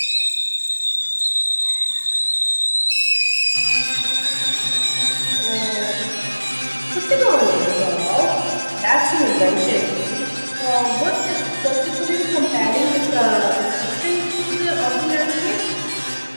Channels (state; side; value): inverted; both; correlation -1.00